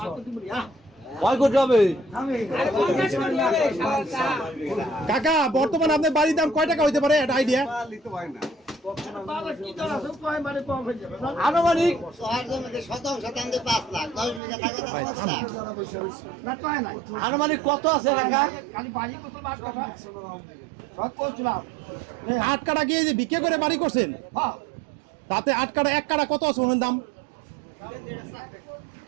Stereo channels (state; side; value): drops out; left; at 14.4 s